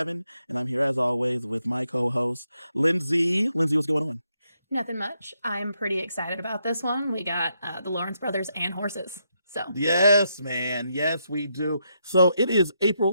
and I'm here as always with my co-host, Lindsay. Lindsay, what's going on? Nothing much. I'm pretty excited about this one. We got the Lawrence brothers and horses. So Yes, man. Yes, we do. So it is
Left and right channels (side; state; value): both; inverted; correlation -0.80